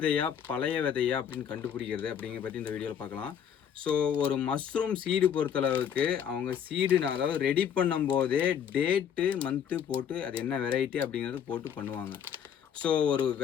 பழைய விதையா அப்படின்னு கண்டுபிடிக்கிறது அப்படிங்கிற பற்றி இந்த வீடியோவில் பார்க்கலாம். ஸோ ஒரு மஷ்ரூம் சீடு பொறுத்தளவுக்கு அவங்க சீடு அதாவது ரெடி பண்ணும்போதே டேட்டு மந்த்து போட்டு அது என்ன வெரைட்டி அப்படிங்கிறது போட்டு பண்ணுவாங்க. ஸோ ஒரு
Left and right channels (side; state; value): right; quieter; 8.5 dB